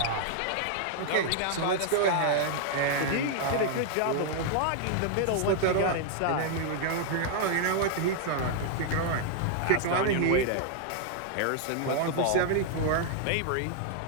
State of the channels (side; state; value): both; different; correlation 0.00